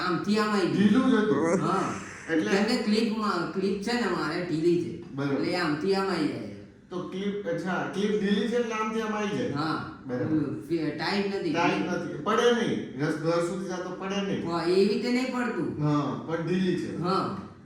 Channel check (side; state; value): both; identical; correlation 1.00